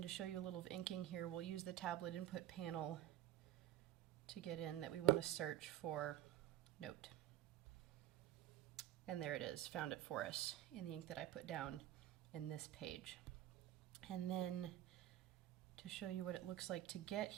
to show you a little of inking here, we'll use the tablet input panel to get in that we want to search for note. And there it is, found it for us in the ink that I put down in this page. And then to show you what it looks like to get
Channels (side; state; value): left; quieter; 13.6 dB